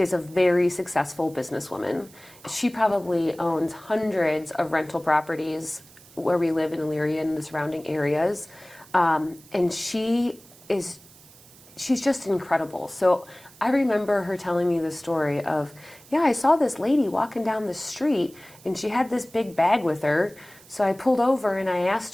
a very successful businesswoman. She probably owns hundreds of rental properties where we live in Elyria and the surrounding areas. And she's just incredible. So I remember her telling me the story of, yeah, I saw this lady walking down the street and she had this big bag with her. So I pulled over and I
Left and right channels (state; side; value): noise; right; hiss, 24 dB below the sound